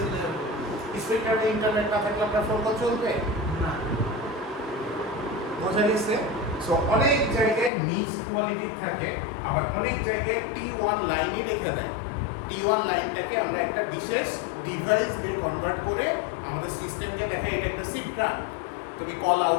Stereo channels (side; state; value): right; drops out; at 7.7 s